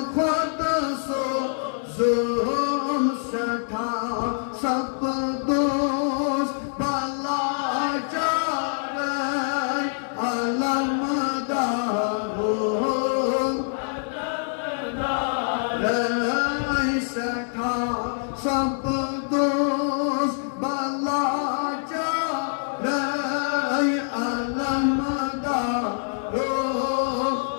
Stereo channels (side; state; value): right; silent; digital silence